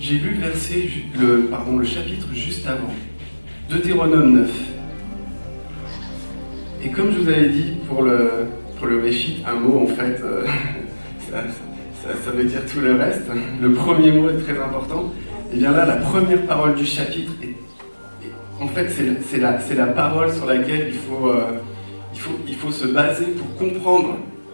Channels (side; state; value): both; inverted; correlation -1.00